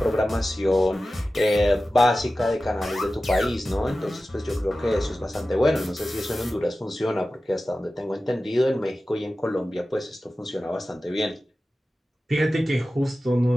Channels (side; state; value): both; normal; correlation 0.95